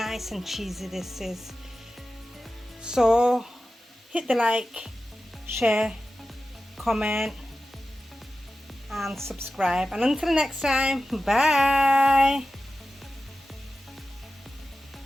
and cheesy this is. So hit the like, share, comment, and subscribe. And until next time, bye.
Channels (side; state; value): both; normal; correlation 0.94